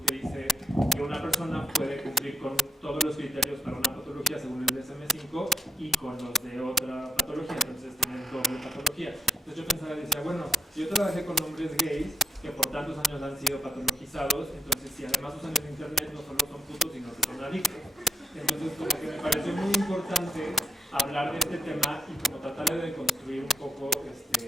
que dice que una persona puede cumplir con todos los criterios para una patología según el DSM-5 y con los de otra patología, entonces tienen doble patología. Entonces yo pensaba y decía, bueno, yo trabajé con hombres gays que por tantos años han sido patologizados, entonces si además usan el internet no solo son putos, sino que son adictos. Entonces como que me pareció muy importante hablar de este tema y como tratar de deconstruir un poco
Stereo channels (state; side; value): normal; both; correlation 0.80